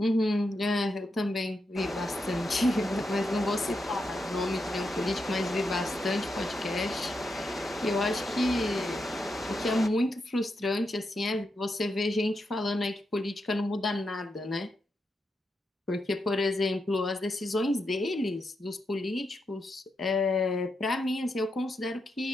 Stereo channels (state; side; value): normal; both; correlation 0.85